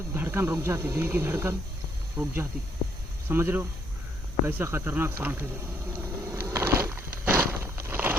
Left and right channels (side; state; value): both; normal; correlation 0.70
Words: धड़कन रुक जाती, दिल की धड़कन रुक जाती। समझ रहे हो कैसा खतरनाक सांप है।